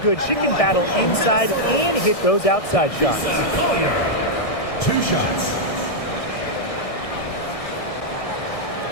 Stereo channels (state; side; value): late; right; 1.6 ms